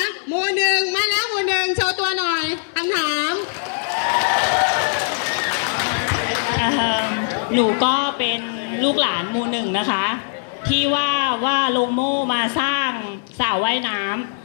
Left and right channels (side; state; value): right; silent; 65 dB below the other